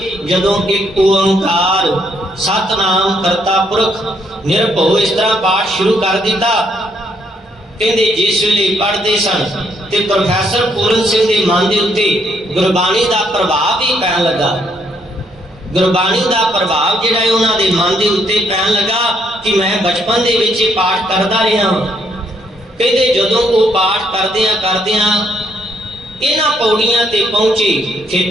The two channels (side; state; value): both; normal; correlation 0.71